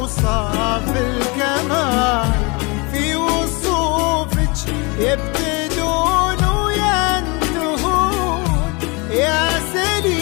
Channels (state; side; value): quieter; right; 28.6 dB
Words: الكمال، في وصوفك يبتدون وينتهون، يا